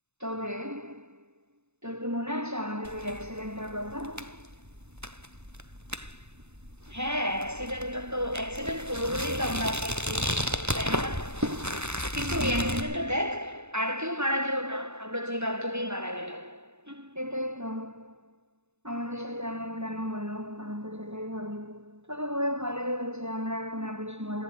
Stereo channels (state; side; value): late; left; 0.81 ms